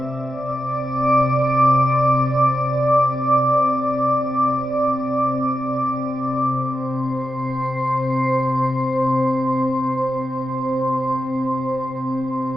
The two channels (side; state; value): both; normal; correlation 0.90